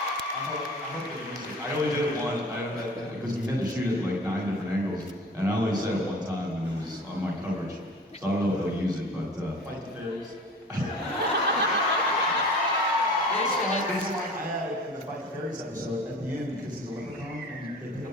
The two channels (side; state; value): both; normal; correlation 0.42